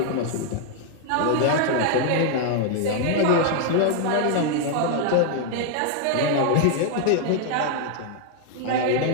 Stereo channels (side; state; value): both; different; correlation 0.00